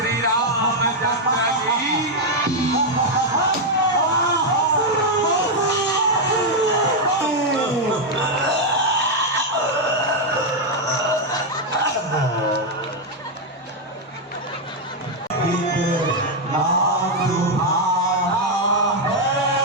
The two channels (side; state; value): both; normal; correlation 0.01